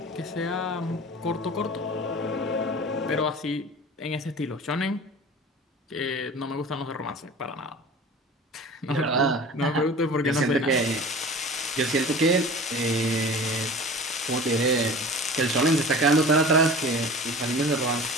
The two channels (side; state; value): both; normal; correlation 0.39